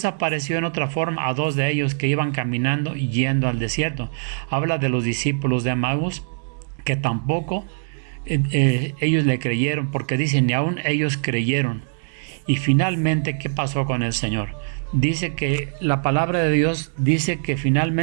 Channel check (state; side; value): silent; left; digital silence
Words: apareció en otra forma a 2 de ellos que iban caminando y yendo al desierto. Habla de los discípulos de Emaús, que tampoco ellos le creyeron, porque dicen, ni aún ellos creyeron. Y finalmente, ¿qué pasó con el Señor? Dice que la palabra de Dios dice que